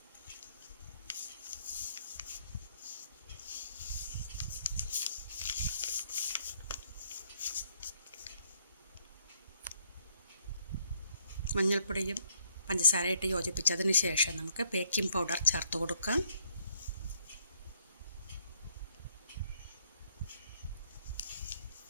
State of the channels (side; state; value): both; inverted; correlation -0.68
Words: മഞ്ഞൾപ്പൊടിയും പഞ്ചസാരയിട്ട് യോജിപ്പിച്ചതിന് ശേഷം നമുക്ക് ബേക്കിംഗ് പൗഡർ ചേർത്ത് കൊടുക്കാം.